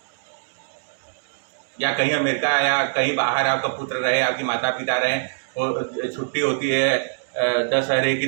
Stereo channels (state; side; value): silent; left; digital silence